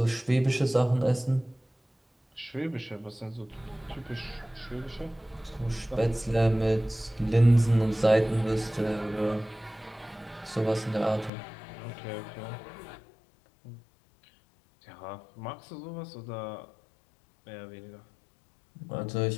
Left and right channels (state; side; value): drops out; right; at 11.3 s